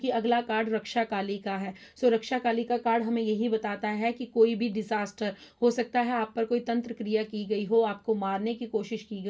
अगला कार्ड रक्षा काली का है। सो रक्षा काली का कार्ड हमें यही बताता है कि कोई भी डिजास्टर हो सकता है, आप पर कोई तंत्र क्रिया की गई हो, आपको मारने की कोशिश की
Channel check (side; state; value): both; identical; correlation 1.00